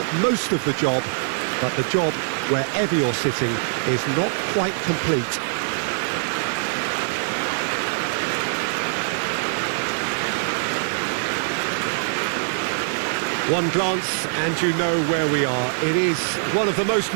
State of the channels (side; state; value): left; silent; digital silence